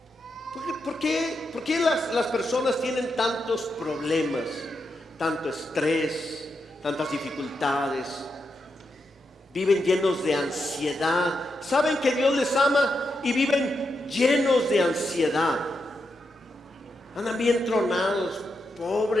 ¿Por qué las personas tienen tantos problemas, tanto estrés, tantas dificultades? Viven llenos de ansiedad. Saben que Dios les ama y viven llenos de ansiedad. Andan bien tronados,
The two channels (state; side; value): normal; both; correlation 0.85